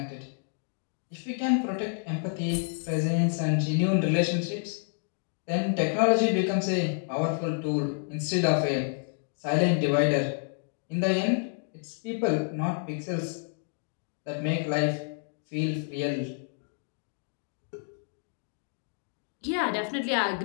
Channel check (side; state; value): right; silent; 57 dB below the other